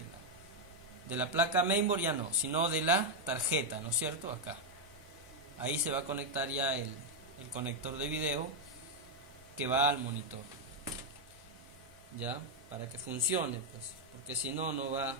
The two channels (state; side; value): normal; both; correlation 0.01